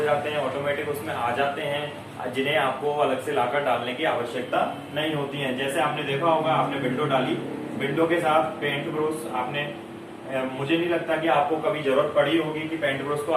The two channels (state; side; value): identical; both; correlation 1.00